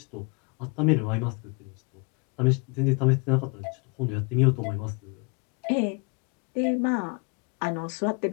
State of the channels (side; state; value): right; quieter; 32.2 dB